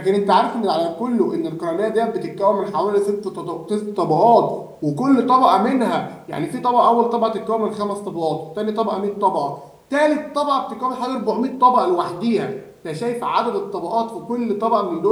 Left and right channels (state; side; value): identical; both; correlation 1.00